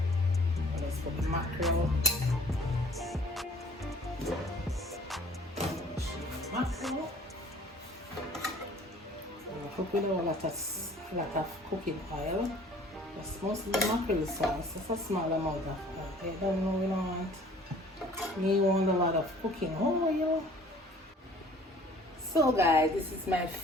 Let's put the mackerel. Mackerel. I cook with a lot of cooking oil. That's mostly the mackerel sauce. It's a small amount of oil. I don't know, you don't want a lot of cooking oil. So guys, this is my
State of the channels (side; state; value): both; normal; correlation 0.52